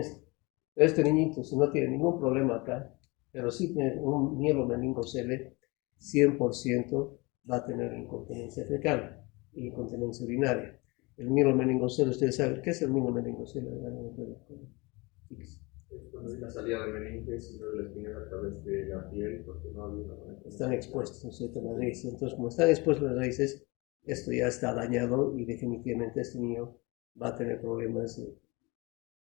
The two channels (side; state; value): right; quieter; 25.5 dB